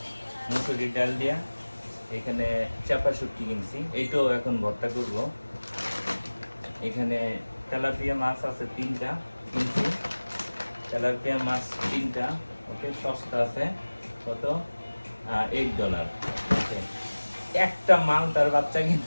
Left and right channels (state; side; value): inverted; both; correlation -1.00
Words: মুসুরির ডাল দিয়া। এখানে চাপা শুটকি কিনছি, এইটাও এখন ভর্তা করব। এখানে তেলাপিয়া মাছ আছে 3টা কিনছি। তেলাপিয়া মাছ 3টা, ওকে, সস্তা আছে। কত? $8। ওকে, একটা মালটার বাচ্চা